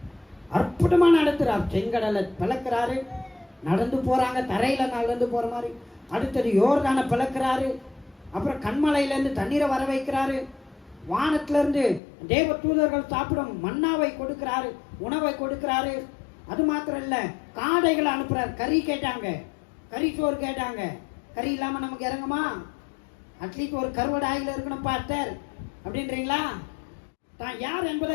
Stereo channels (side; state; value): right; drops out; at 12.0 s